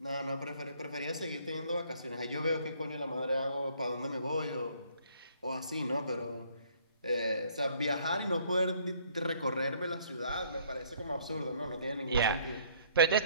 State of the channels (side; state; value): both; inverted; correlation -0.62